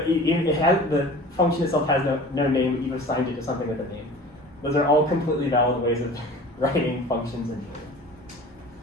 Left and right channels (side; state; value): both; normal; correlation 0.41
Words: the function itself has no name, but you've assigned it to something with a name. Those are all completely valid ways of writing functions in